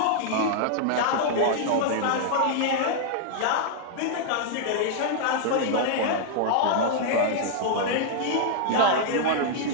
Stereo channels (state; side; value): different; both; correlation -0.01